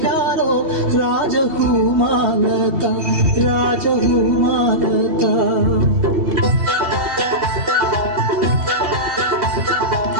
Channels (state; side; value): late; left; 2.7 ms